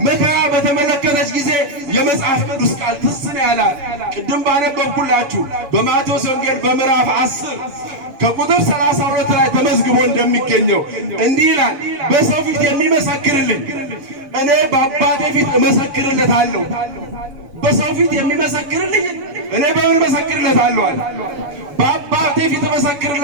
መከራ በተመለከተች ጊዜ የመጽሐፍ ቅዱስ ቃል ትዝ ነው ያላት። ቅድም ባነበብኩላችሁ በማቴዎስ ወንጌል በምዕራፍ 10 ከቁጥር 32 ላይ ተመዝግቦ እንደሚገኘው እንዲህ ይላል፣ በሰው ፊት የሚመሰክርልኝ እኔ በአባቴ ፊት እመሰክርለታለሁ። በሰው ፊት የሚመሰክርልኝ እኔ በምን እመሰክርለታለሁ አለ? በአባቴ ፊት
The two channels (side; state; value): left; late; 6.9 ms